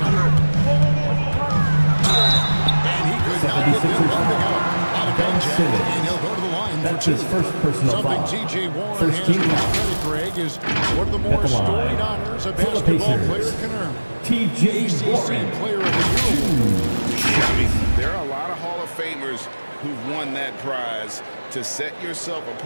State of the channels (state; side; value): inverted; both; correlation -1.00